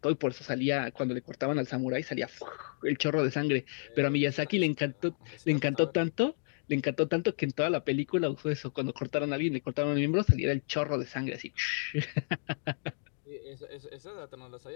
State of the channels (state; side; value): silent; right; digital silence